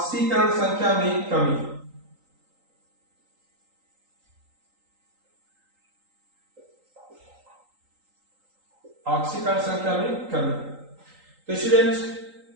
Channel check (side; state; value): left; late; 3.8 ms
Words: संख्या में कमी। ऑक्सीकरण संख्या में कमी। तो स्टूडेंट